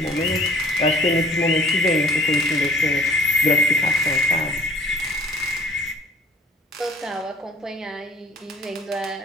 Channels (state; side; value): normal; both; correlation 0.52